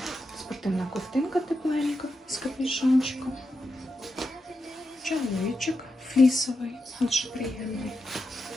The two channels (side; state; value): both; normal; correlation 0.87